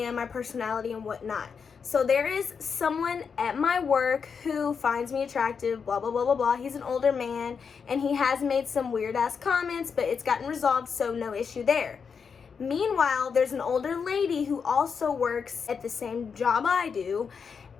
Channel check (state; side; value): quieter; right; 6.1 dB